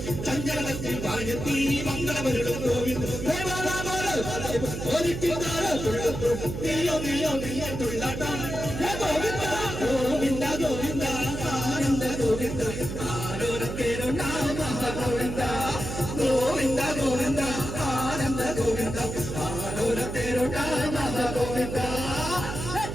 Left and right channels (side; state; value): right; noise; hum, 5 dB below the sound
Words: ചഞ്ചലത്തിൽ വാഴത്തി മംഗളമരുളും ഗോവിന്ദ ഗോവിന്ദ ഗോവിന്ദ ആനന്ദ ഗോവിന്ദ ആരോരത്തേരോ നാമ ഗോവിന്ദ ഗോവിന്ദ ഗോവിന്ദ ആനന്ദ ഗോവിന്ദ ആരോരത്തേരോ നാമ ഗോവിന്ദ